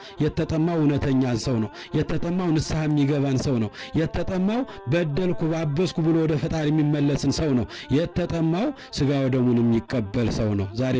የተጠማው እውነተኛን ሰው ነው። የተጠማው ንስሐ የሚገባን ሰው ነው። የተጠማው በደልኩ ባበስኩ ብሎ ወደ ፈጣሪ የሚመለስን ሰው ነው። የተጠማው ሥጋ ወደሙን የሚቀበል ሰው ነው።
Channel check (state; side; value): identical; both; correlation 1.00